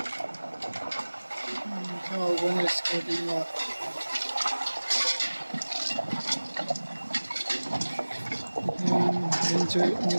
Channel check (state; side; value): inverted; both; correlation -1.00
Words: sao con này sẽ đi mà mình chơi những